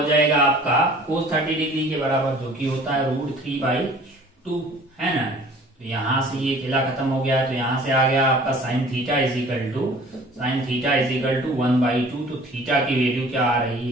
जाएगा आपका cos 30 डिग्री के बराबर, जो कि होता है √3/2 है ना। तो यहां से ये किला खत्म हो गया, तो यहां से आ गया आपका sine theta is equal to 1/2। तो थीटा की वैल्यू क्या आ रही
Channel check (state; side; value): normal; both; correlation 0.49